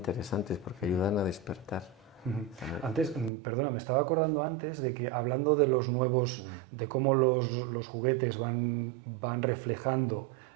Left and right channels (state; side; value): drops out; left; at 3.3 s